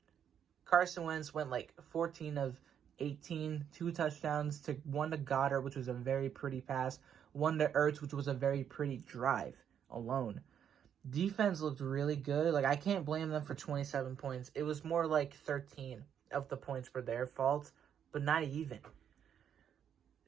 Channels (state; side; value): quieter; left; 8.7 dB